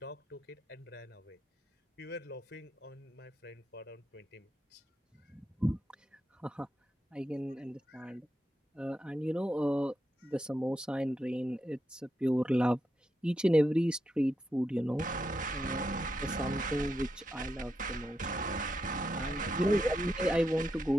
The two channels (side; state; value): both; normal; correlation 0.85